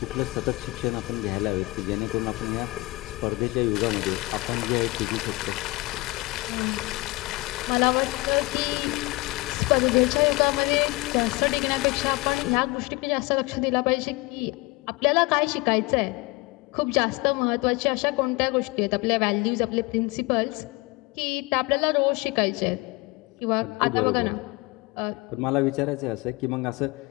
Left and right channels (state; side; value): quieter; right; 23.3 dB